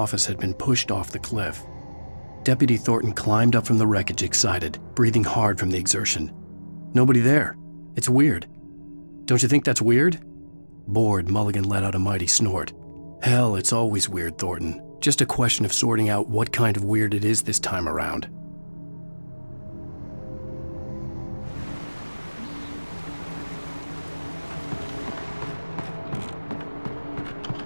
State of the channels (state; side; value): inverted; both; correlation -1.00